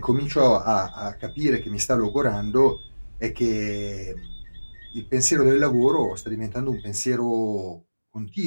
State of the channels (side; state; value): both; inverted; correlation -1.00